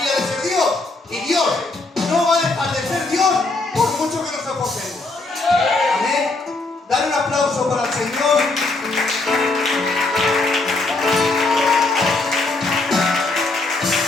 de ser Dios. Y Dios no va a dejar de ser Dios por mucho que nos esforcemos. Amén. Dale un aplauso para el Señor.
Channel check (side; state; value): right; quieter; 3.3 dB